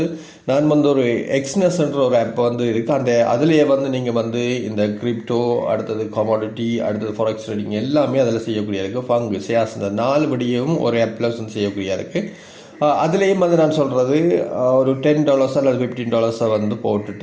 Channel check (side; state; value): both; identical; correlation 1.00